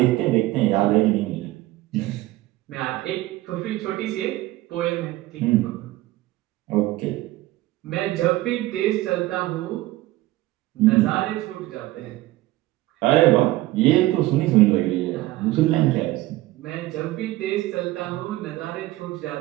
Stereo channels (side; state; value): left; quieter; 17.6 dB